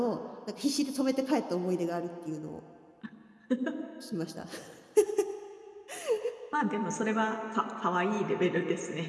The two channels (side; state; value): both; identical; correlation 1.00